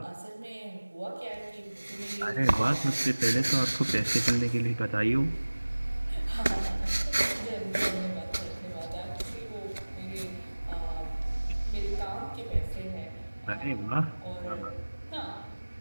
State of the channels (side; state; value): both; inverted; correlation -1.00